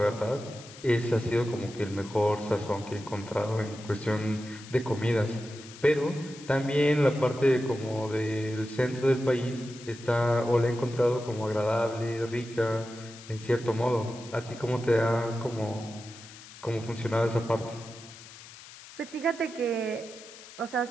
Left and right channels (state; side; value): noise; left; hiss, 17 dB below the sound